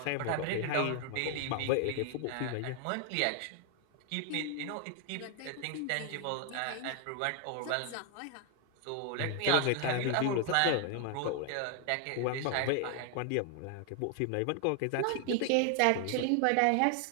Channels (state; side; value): different; both; correlation 0.00